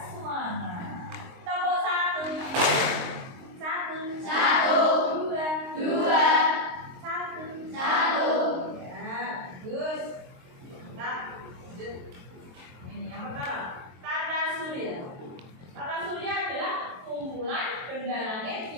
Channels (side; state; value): left; late; 23 ms